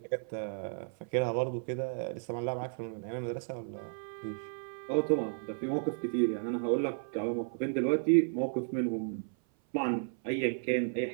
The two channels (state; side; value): silent; left; 56 dB below the other